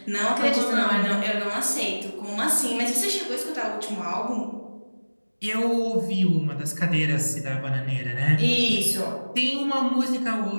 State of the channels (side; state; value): both; inverted; correlation -1.00